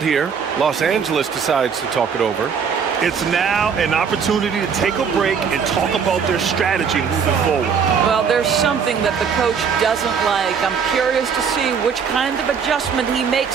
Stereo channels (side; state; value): left; quieter; 6.6 dB